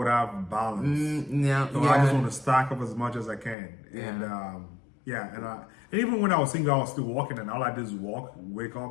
have balance. No, so I just want to stack up as much as I can. Yeah. And even when I was single, I was still walking, and all I did is walk, wake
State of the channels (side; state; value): right; drops out; at 3.6 s